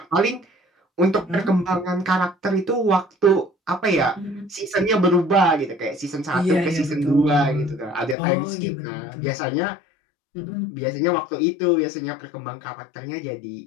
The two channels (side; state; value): right; drops out; at 8.2 s